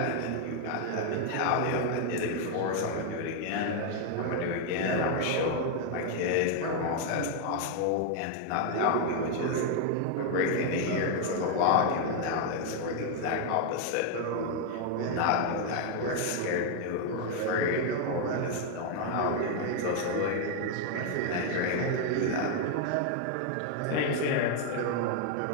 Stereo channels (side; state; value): both; different; correlation 0.00